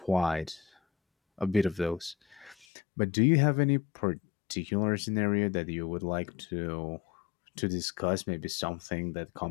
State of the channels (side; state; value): right; drops out; at 2.7 s